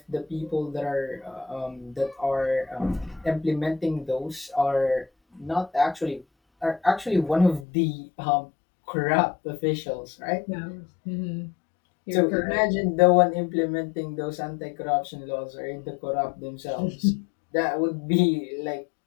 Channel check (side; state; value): right; drops out; at 7.7 s